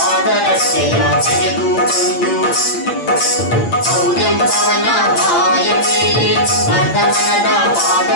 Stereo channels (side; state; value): right; late; 8.7 ms